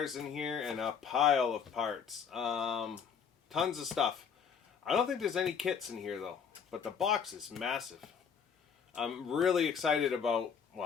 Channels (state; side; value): quieter; right; 6.9 dB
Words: in here and a pile of parts. Tons of stuff. I don't think there's any kits in here though, but the box is massive. I'm really excited about,